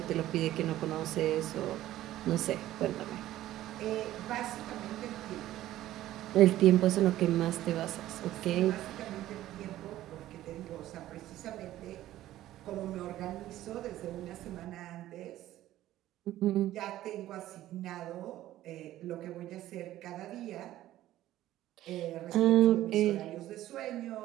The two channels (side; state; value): left; quieter; 14.2 dB